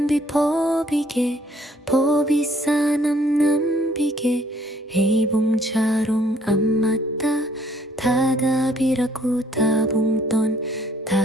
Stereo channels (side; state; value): both; normal; correlation 0.62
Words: 법이게 법이사 남남비게 헤이봉자롱 안맞다 다답이라고 다봉던